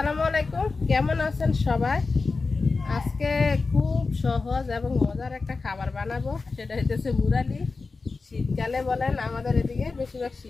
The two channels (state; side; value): quieter; right; 4.1 dB